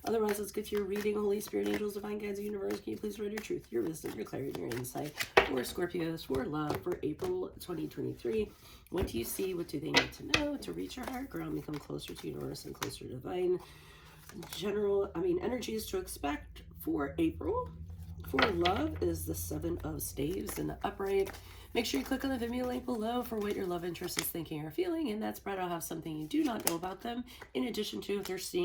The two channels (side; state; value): both; identical; correlation 1.00